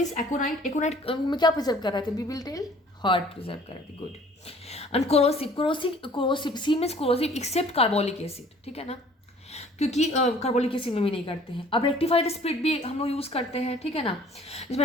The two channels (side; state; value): both; normal; correlation 0.53